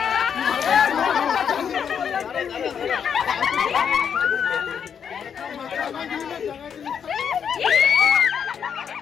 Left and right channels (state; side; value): quieter; right; 7.5 dB